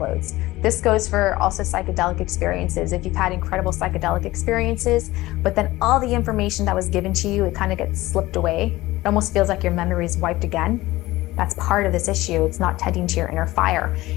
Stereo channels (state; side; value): quieter; right; 18.2 dB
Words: This goes for also psychedelic experiences. If you've had incredible psychedelic experiences, but then all the information that was given to you, it kind of gets slipped away. It almost feels like your memory is wiped again. That's part of this issue. It's not tending to your inner fire.